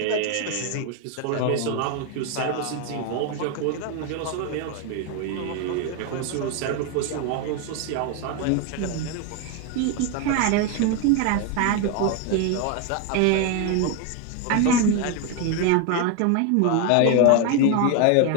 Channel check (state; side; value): different; both; correlation 0.01